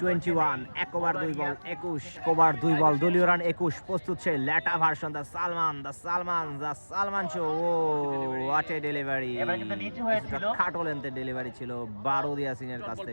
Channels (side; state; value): both; inverted; correlation -1.00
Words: 21, 1 ওভার 2 বল 21, কোবরার 2 বল, দলীয় রান 21। প্রস্তুত সেই লেটা version, the Salman show. Oh what a delivery! খাটো লেন্থের ডেলিভারি ছিল বারুদ ইয়াসিনের কাছ